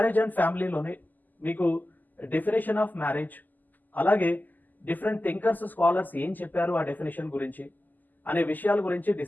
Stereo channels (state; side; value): late; right; 0.085 ms